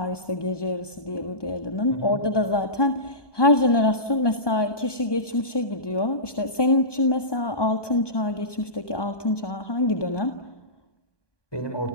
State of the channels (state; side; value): late; right; 1.2 ms